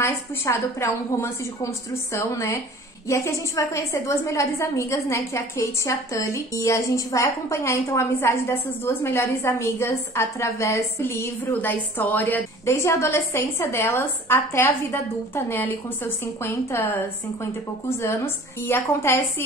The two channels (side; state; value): both; normal; correlation 0.47